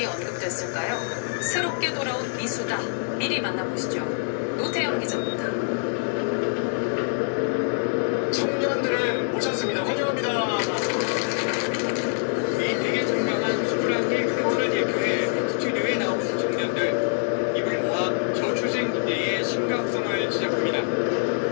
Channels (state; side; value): silent; right; 62 dB below the other